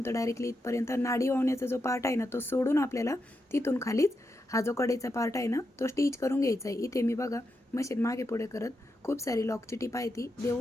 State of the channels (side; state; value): both; normal; correlation 0.85